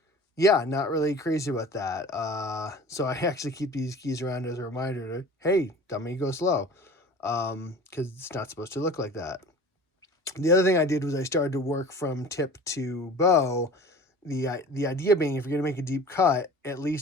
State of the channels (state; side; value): normal; both; correlation 0.41